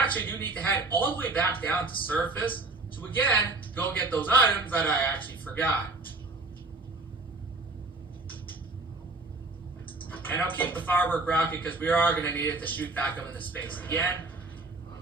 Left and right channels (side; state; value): left; quieter; 3.3 dB